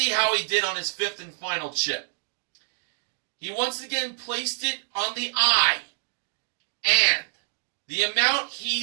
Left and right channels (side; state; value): left; silent; digital silence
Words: how he did on his fifth and final chip. He once again placed it on the eye, and the amount